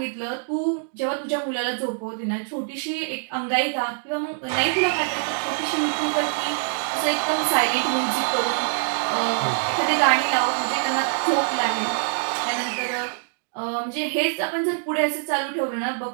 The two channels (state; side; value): silent; left; digital silence